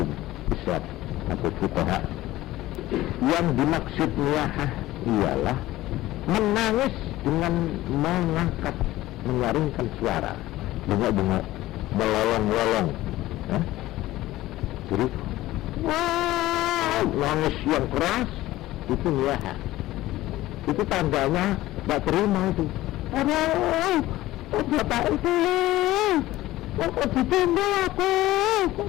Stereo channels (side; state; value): right; quieter; 16.4 dB